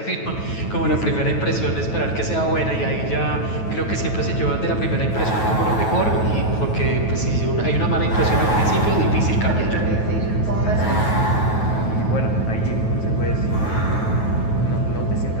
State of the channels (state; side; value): late; right; 9.3 ms